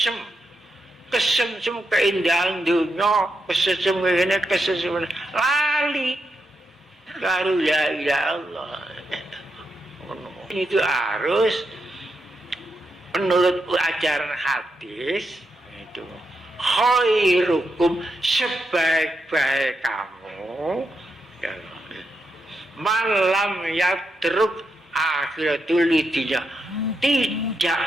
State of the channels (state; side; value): normal; both; correlation 0.84